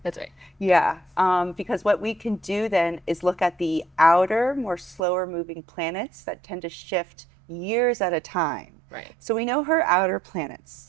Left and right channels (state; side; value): drops out; left; at 5.0 s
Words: That's right. Yeah, because what we can do then is look at the outer, more slower moving planets that tend to shift years at a time. Right. So we know her outer